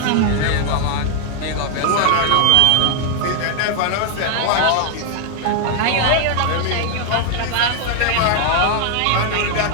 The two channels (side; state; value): both; different; correlation 0.00